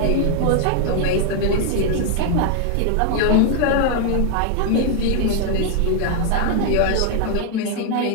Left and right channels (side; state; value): both; different; correlation 0.00